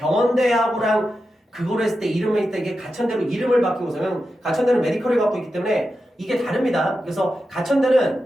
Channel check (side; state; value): both; normal; correlation 0.90